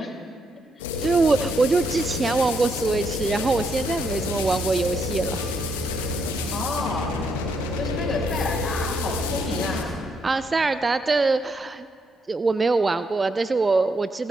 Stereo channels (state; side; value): normal; both; correlation 0.76